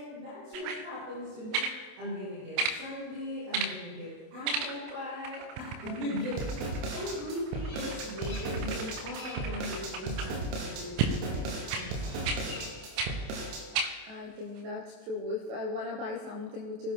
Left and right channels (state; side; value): late; left; 27 ms